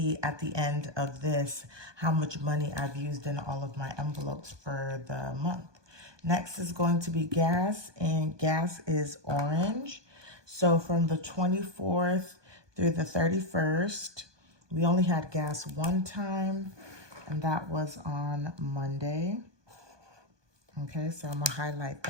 at the end of this how much money I've used in all of my envelopes for the month. Next is going to be gas, and gas is orange. So from the 24th through the 31st, we only had gas one time, and that was on Monday. Okay, so I'm gonna highlight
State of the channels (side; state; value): left; late; 1.2 ms